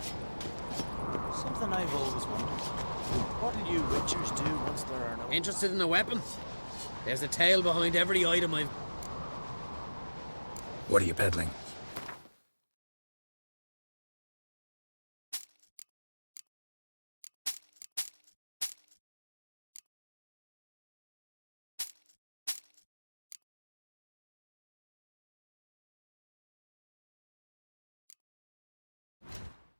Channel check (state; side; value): inverted; both; correlation -1.00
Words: Something I've always wondered. What'll you witchers do once there are no... Interested in a weapon? There's a tale behind every item I've... What are you peddling?